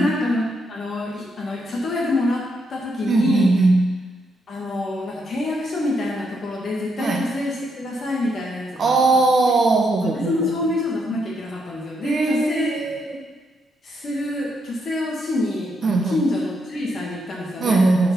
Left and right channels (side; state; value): both; normal; correlation 0.78